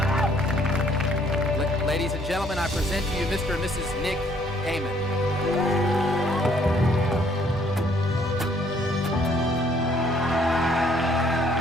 Ladies and gentlemen, I present to you Mr. and Mrs. Nick Heyman.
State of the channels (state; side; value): normal; both; correlation 0.64